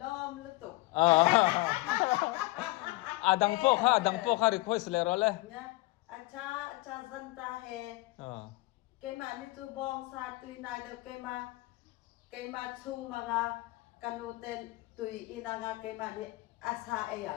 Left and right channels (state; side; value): quieter; right; 21.2 dB